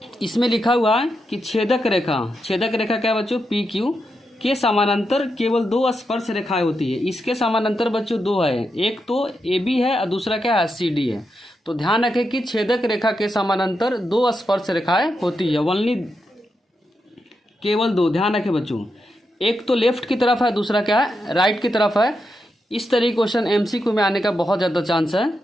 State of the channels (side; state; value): both; normal; correlation 0.85